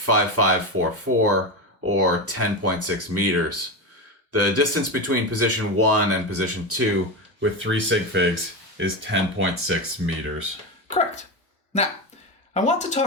or 10.6 meters. The distance between position 1 and position 2 with 3 sig figs is 10.6 meters. Correct. Now, I want to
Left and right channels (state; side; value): normal; both; correlation 0.17